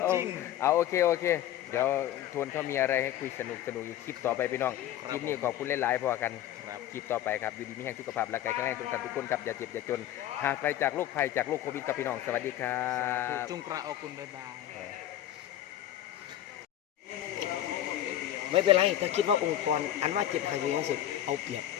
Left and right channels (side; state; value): right; quieter; 12.2 dB